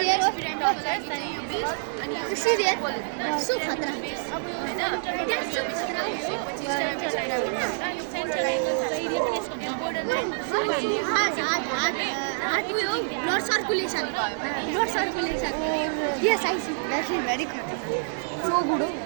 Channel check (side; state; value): left; silent; digital silence